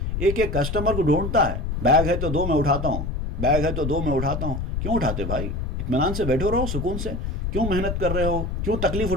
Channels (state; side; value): noise; left; rumble, 3 dB below the sound